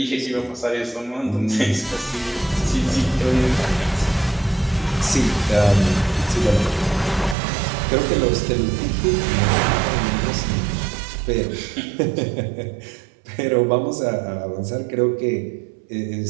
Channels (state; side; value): drops out; left; at 7.4 s